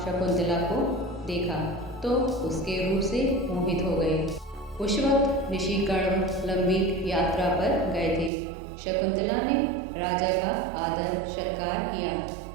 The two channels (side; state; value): left; drops out; at 8.3 s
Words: शकुंतला को देखा तो उसके रूप से मोहित हो गए। उस वक्त ऋषि कण्व लंबी यात्रा पर गए थे। शकुंतला ने राजा का आदर सत्कार किया।